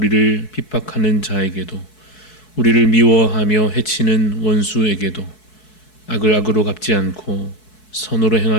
핍박하는 자에게도, 우리를 미워하며 해치는 원수에게도 악을 악으로 갚지 않고 선으로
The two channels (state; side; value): late; right; 4.6 ms